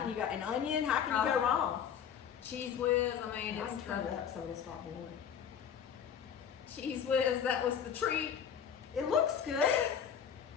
you go? An onion. How can you Oh. go wrong? Cheese whiz, I mean, I it's can turn it the up so it'll start boiling. cheese whiz, that was the treat. It looks good.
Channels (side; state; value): right; quieter; 8.1 dB